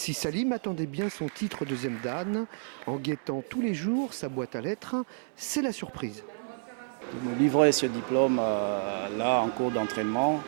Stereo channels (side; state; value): left; silent; digital silence